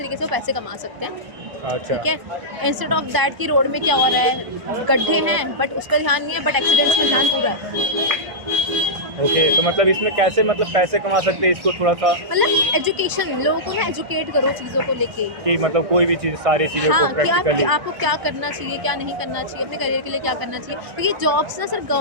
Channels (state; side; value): late; left; 1.0 ms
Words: से वो पैसे कमा सकते हैं, अच्छा, ठीक है। इंस्टेड ऑफ दैट कि रोड में क्या हो रहा है, गड्ढे हैं बट उस पर ध्यान नहीं है, बट एक्सीडेंट्स में ध्यान पूरा है। ओके, तो मतलब इसमें कैसे मतलब पैसे कमा सकते हैं, इसको थोड़ा सा मतलब एजुकेशन, लोगों को ना एजुकेट करो चीज़ों को लेके, कि मतलब कोई भी चीज़ सारी चीज़ों हाँ, को कि प्रैक्टिकली आपको क्या करना चाहिए, क्या नहीं करना चाहिए, अपने करियर के लिए क्या करना चाहिए। क्योंकि जॉब्स ना सिर्फ